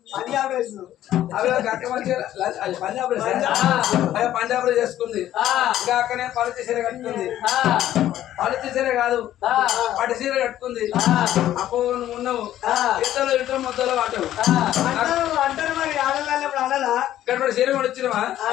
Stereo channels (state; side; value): quieter; right; 12.6 dB